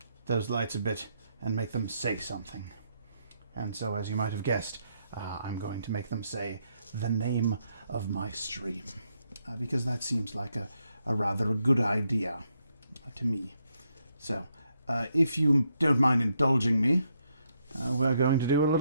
those lights a bit and make them say something? And so, as you might have guessed, I'm going to make them say the name of my stream, because that seems like a rather good idea to me. So, if you don't mind indulging me, we're going to do a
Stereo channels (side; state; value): both; inverted; correlation -0.77